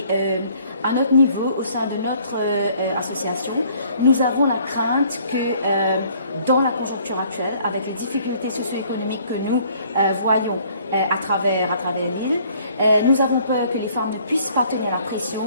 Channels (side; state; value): both; inverted; correlation -0.59